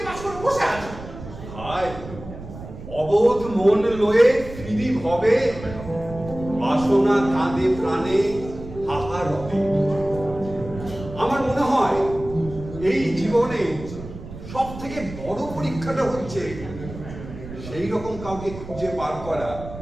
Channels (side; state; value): right; noise; rumble, 13 dB below the sound